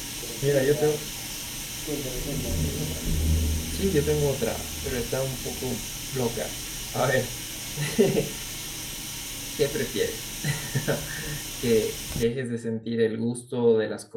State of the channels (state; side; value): identical; both; correlation 1.00